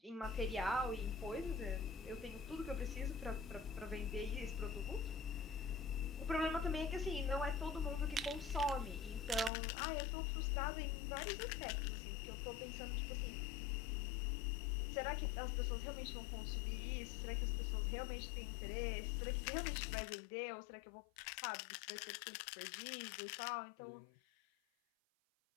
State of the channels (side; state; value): right; drops out; at 9.5 s